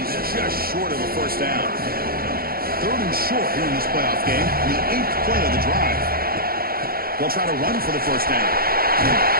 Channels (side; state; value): left; late; 0.43 ms